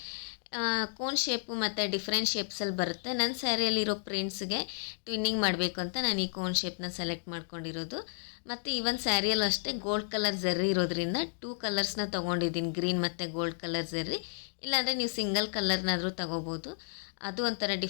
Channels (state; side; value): silent; right; digital silence